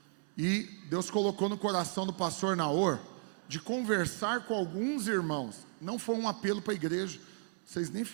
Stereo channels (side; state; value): left; silent; 55 dB below the other